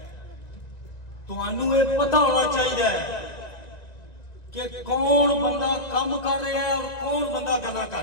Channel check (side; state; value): right; late; 1.9 ms